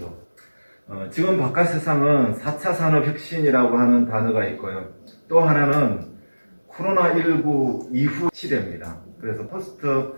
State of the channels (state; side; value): inverted; both; correlation -1.00